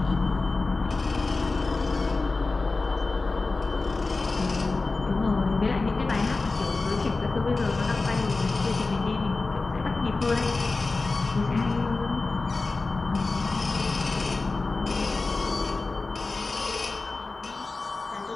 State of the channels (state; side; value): quieter; right; 3.6 dB